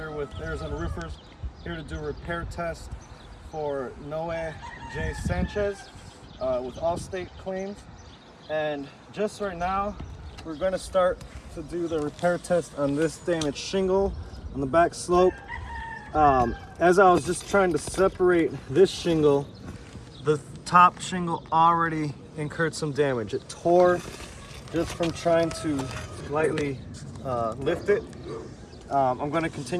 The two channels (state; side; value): identical; both; correlation 1.00